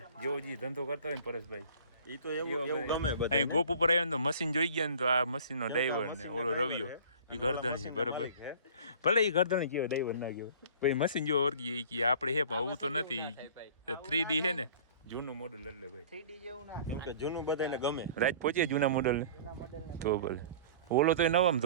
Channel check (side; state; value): both; inverted; correlation -0.45